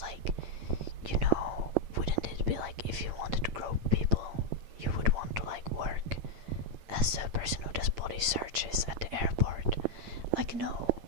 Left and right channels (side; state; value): left; late; 9.0 ms